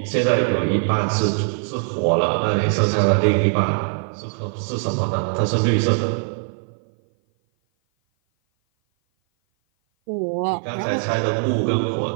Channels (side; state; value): left; silent; 56 dB below the other